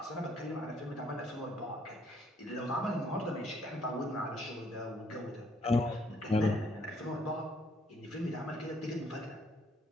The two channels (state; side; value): normal; both; correlation 0.67